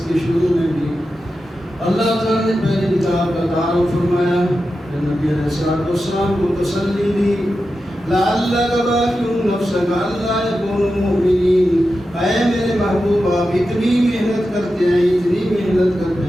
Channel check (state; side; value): normal; both; correlation 0.91